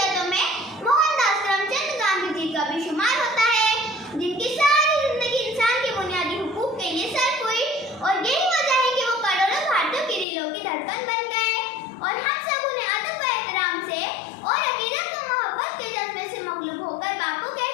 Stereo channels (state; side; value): drops out; right; at 10.2 s